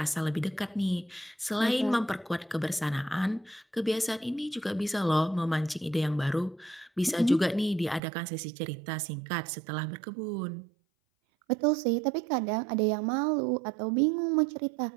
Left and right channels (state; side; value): drops out; left; at 8.0 s